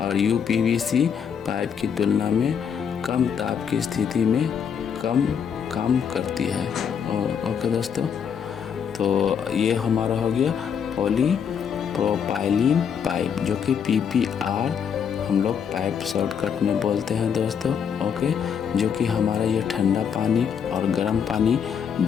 यूपीवीसी पाइप की तुलना में कम ताप की स्थिति में कम काम करती है। और ओके दोस्तों, तो ये हमारा हो गया पॉलीप्रोपाइलीन पाइप, जो कि पीपीआर हम लोग पाइप शॉर्टकट में बोलते हैं दोस्तों। ओके, जो कि हमारा ये ठंडा पानी और गर्म पानी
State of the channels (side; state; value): right; quieter; 7.4 dB